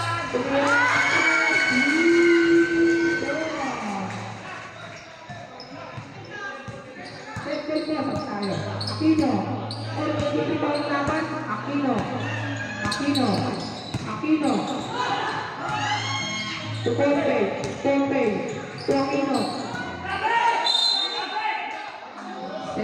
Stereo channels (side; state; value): both; identical; correlation 1.00